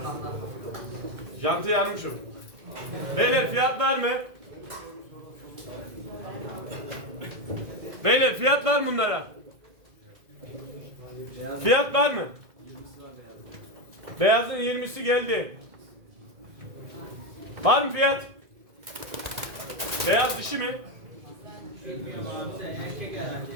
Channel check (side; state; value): left; late; 2.0 ms